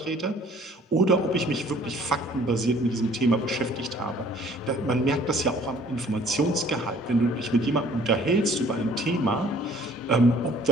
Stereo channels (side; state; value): both; normal; correlation 0.55